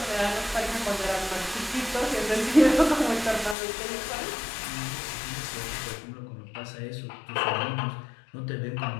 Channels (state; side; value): drops out; right; at 3.6 s